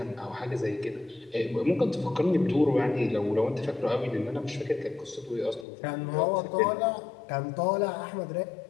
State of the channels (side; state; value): right; drops out; at 5.7 s